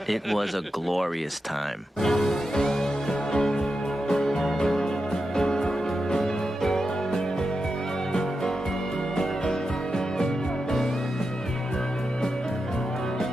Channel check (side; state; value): both; normal; correlation 0.89